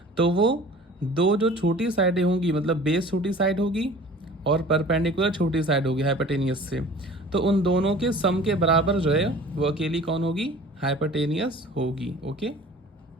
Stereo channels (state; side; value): normal; both; correlation 0.45